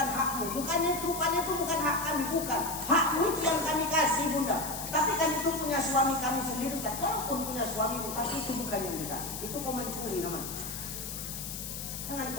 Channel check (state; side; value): noise; left; hiss, 7 dB below the sound